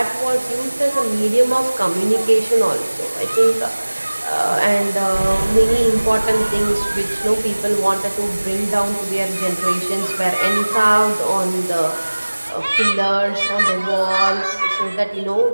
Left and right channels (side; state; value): both; inverted; correlation -1.00